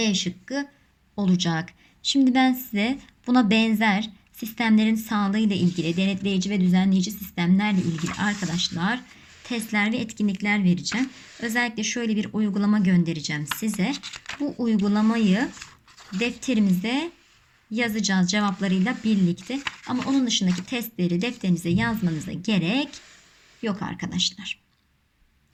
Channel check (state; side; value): identical; both; correlation 1.00